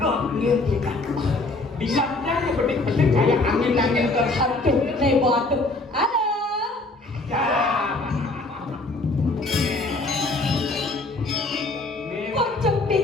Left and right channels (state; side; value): quieter; right; 3.1 dB